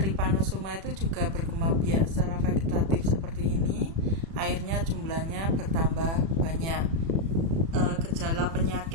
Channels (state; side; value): late; left; 36 ms